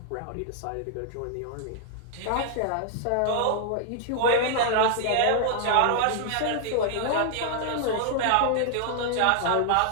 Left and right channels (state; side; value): different; both; correlation 0.00